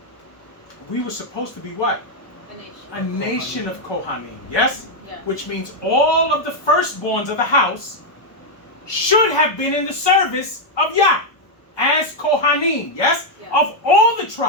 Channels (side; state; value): right; late; 1.2 ms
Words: we were supposed to be what? A nation. A nation of Kohanim, yes? Yes. Which means all of the firstborns of the house should have been in the service of Yah as Kohanim, yes? Yes. Of all the